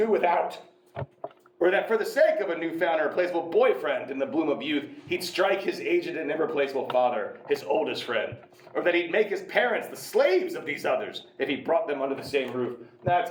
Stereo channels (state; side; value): identical; both; correlation 1.00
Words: without? Or that for the sake of a newfound irreplaceable boyfriend in the bloom of youth, he'd strike his aged and irreplaceable father, his oldest friend? Or that he'd make his parents the slaves of these others if he brought them under the same roof? That's